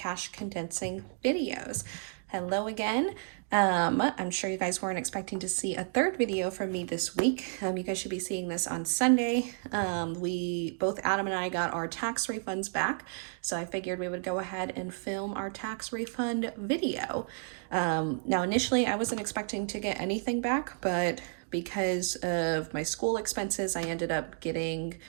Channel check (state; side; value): silent; left; 55 dB below the other